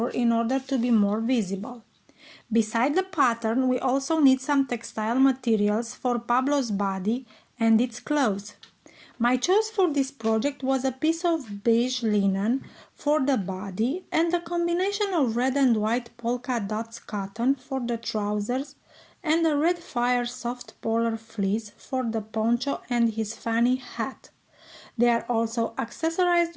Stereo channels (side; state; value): both; identical; correlation 1.00